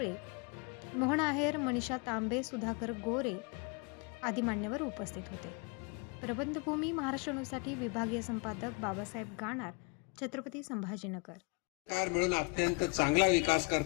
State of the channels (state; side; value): quieter; right; 30.5 dB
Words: मोहन आहेर, मनीषा तांबे, सुधाकर गोरे आदी मान्यवर उपस्थित होते। प्रबंधभूमी महाराष्ट्र न्यूजसाठी विभागीय संपादक बाबासाहेब गाणार, छत्रपती संभाजीनगर। सरकार मिळून अत्यंत चांगला विकास